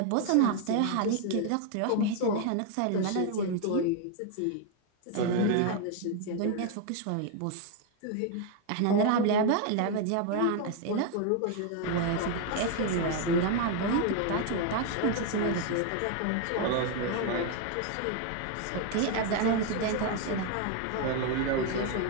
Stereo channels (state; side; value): different; both; correlation 0.01